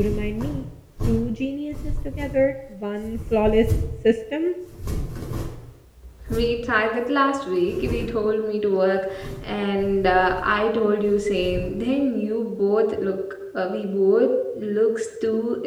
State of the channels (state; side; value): identical; both; correlation 1.00